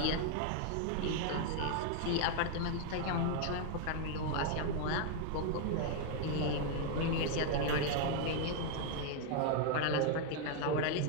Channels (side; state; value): both; different; correlation 0.00